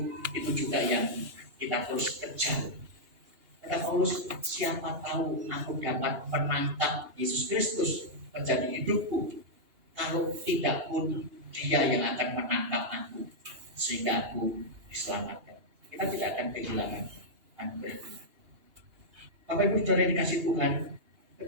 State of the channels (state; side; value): late; left; 2.8 ms